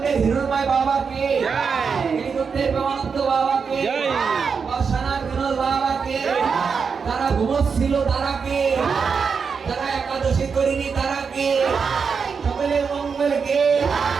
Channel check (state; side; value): quieter; left; 5.8 dB